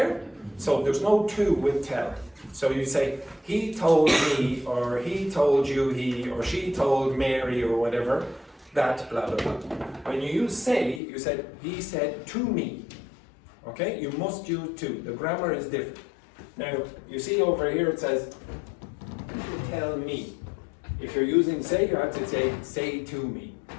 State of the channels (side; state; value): right; drops out; at 11.0 s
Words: So there's no to with tell. So you say, he told me, or he told you, he, or she told Mary, or whatever, that, blah, blah, blah. When you use say, you said, he said to me. Okay, you must use to. The grammar is different. Now, you see over here it says, tell me. If you're using say, you have to say to me.